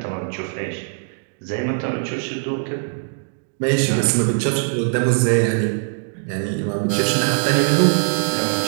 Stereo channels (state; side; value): silent; left; digital silence